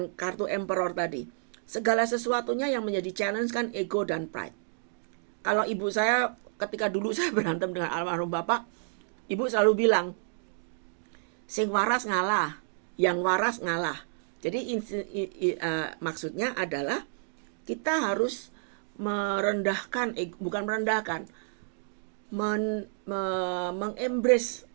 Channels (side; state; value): left; silent; digital silence